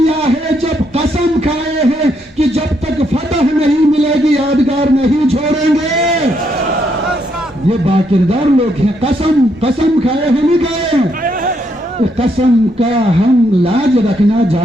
ہے، جب قسم کھائے ہیں کہ جب تک فتح نہیں ملے گی یادگار نہیں چھوڑیں گے. یہ باکردار لوگ ہیں. قسم کھائے ہیں، نہیں کھائے. قسم کا ہم لاج رکھنا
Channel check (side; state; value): both; normal; correlation 0.75